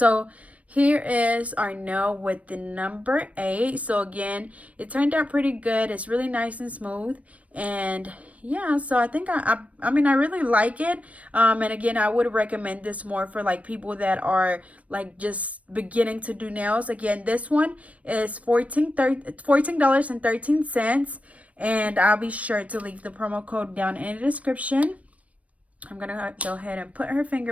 here is our nail with the number 8. So again, it turned out pretty good. It's really nice and smooth. And yeah, so I think I mean, I really like it. And again, I would recommend this more for like people that are like just beginning to do nails. Again, this one is $14.13. And I'll be sure to leave the promo code down in the description. I'm going to go ahead and put her finger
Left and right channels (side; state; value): left; late; 0.066 ms